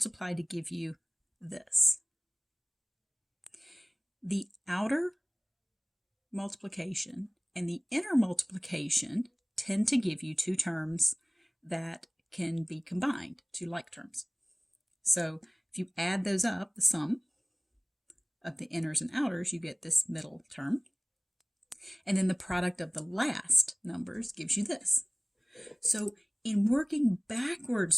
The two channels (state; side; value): identical; both; correlation 1.00